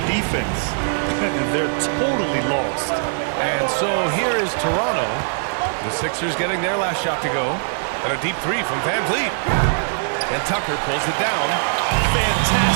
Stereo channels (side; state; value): left; silent; 65 dB below the other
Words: defense. They're totally lost. And so here is Toronto. The Sixers getting their last shot to go. And a deep 3 from Van Vliet. And Tucker pulls it down.